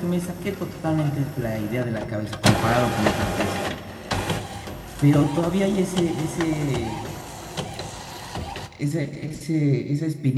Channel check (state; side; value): identical; both; correlation 1.00